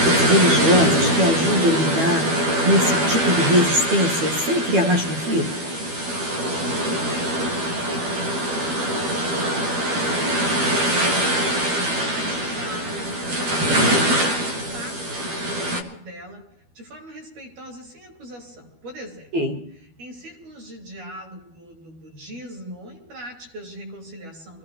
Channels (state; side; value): late; left; 12 ms